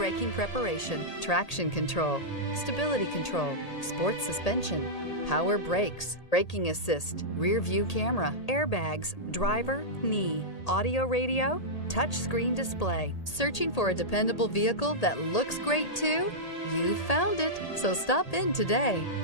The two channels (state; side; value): late; right; 1.8 ms